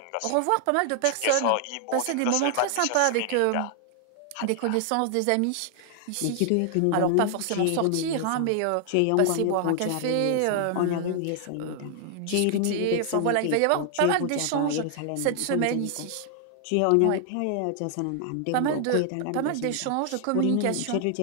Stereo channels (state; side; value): different; both; correlation 0.00